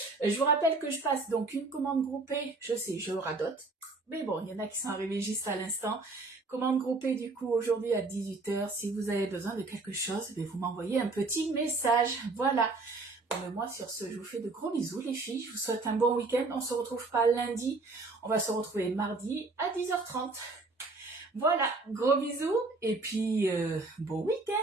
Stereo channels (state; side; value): quieter; left; 3.5 dB